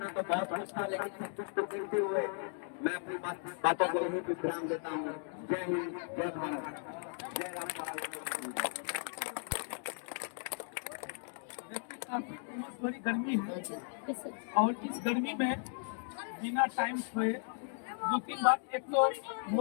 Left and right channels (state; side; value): silent; right; 54 dB below the other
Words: तो बहुत कुछ था, लेकिन सब कुछ को देखते हुए मैं अपनी बातों को यही विश्राम देता हूँ। जय हिंद, जय भारत, जय राम। बड़ी गर्मी है और इस गर्मी में बिना टाइम सोए 2-3 बार, एक तो